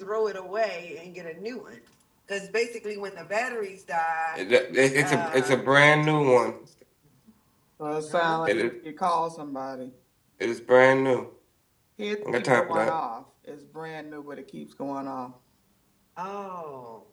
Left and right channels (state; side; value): identical; both; correlation 1.00